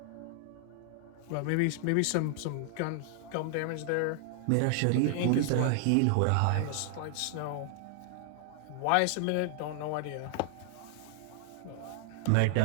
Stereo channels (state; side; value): different; both; correlation 0.00